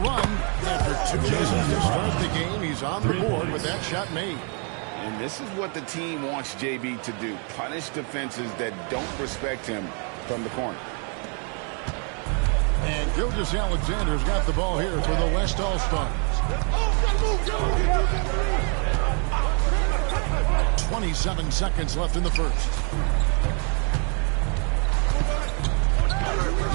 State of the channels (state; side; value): quieter; left; 38.8 dB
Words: After 2 minutes to start the game, he's on the board with that shot made. And this is what the team wants JB to do. Punish defenses that don't respect him from the corner. And Gilgeous-Alexander's got the ball here for the West All-Stars. 27 seconds left in the first.